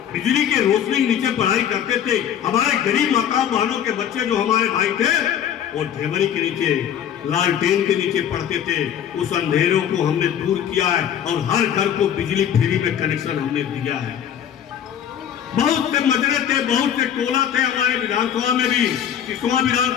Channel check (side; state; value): right; quieter; 9.4 dB